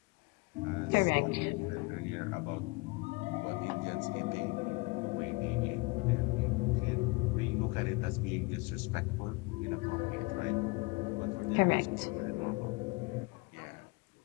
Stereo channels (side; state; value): right; quieter; 26.2 dB